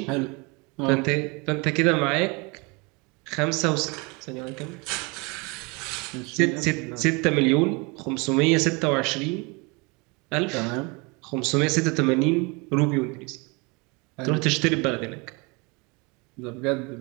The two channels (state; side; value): quieter; left; 28.6 dB